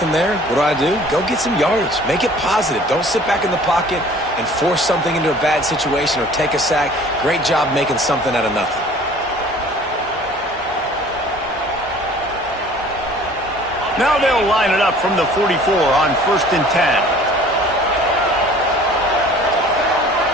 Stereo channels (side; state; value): both; normal; correlation 0.50